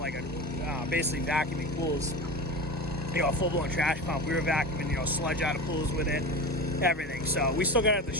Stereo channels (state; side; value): normal; both; correlation 0.28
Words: basically vacuuming pools. A full-blown trash pump. We were vacuuming, sludge out of pools with it, everything. So we still got it at the